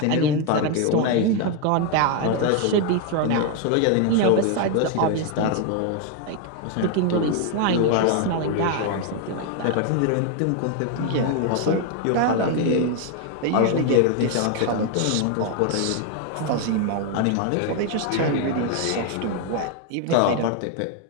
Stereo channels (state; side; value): different; both; correlation 0.01